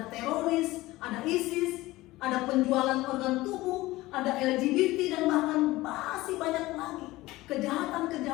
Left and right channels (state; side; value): quieter; right; 18.6 dB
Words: teroris, ada ISIS, ada penjualan organ tubuh, ada LGBT, dan bahkan masih banyak lagi